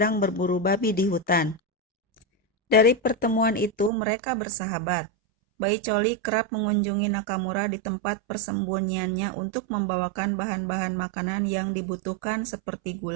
berburu babi di hutan. Dari pertemuan itu mereka bersahabat. Baicholi kerap mengunjungi Nakamura di tempat persembunyiannya untuk membawakan bahan-bahan makanan yang dibutuhkan seperti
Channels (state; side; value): drops out; left; at 3.9 s